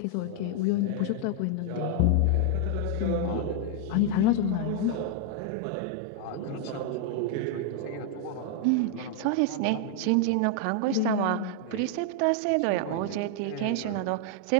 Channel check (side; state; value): both; different; correlation 0.00